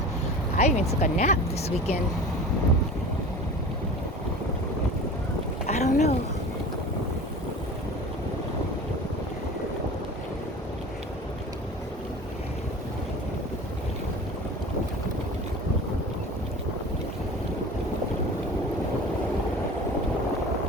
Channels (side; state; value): both; normal; correlation 0.37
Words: I even took a nap this weekend. I don't know.